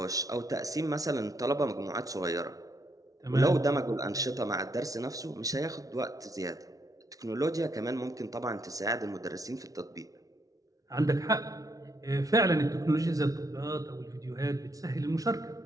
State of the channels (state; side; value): late; left; 0.17 ms